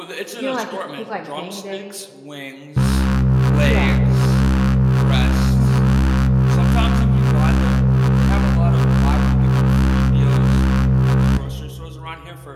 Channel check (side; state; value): both; identical; correlation 1.00